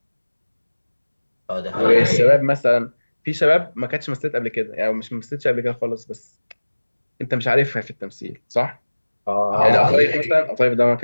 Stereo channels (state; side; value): inverted; both; correlation -1.00